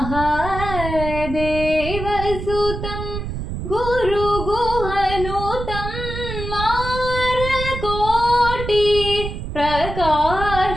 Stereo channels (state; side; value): noise; right; rumble, 6 dB below the sound